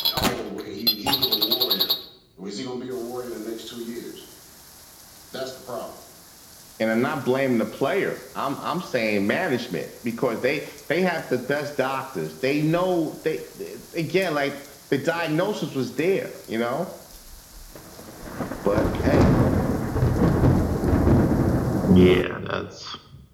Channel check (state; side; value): identical; both; correlation 1.00